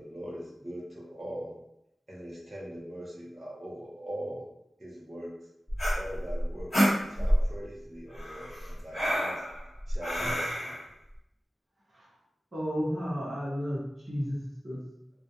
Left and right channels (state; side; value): normal; both; correlation 0.96